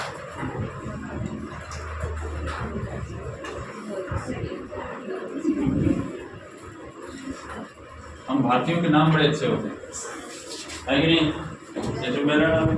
हम भारतीयों के नाम बड़े अच्छे होते हैं, है कि नहीं? जैसे मेरा नाम है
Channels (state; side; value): identical; both; correlation 1.00